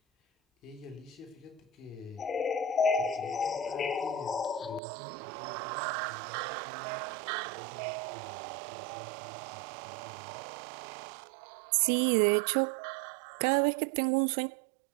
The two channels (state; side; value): drops out; left; at 4.8 s